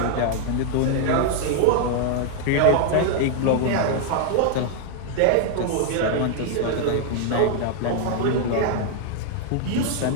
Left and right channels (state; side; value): different; both; correlation 0.00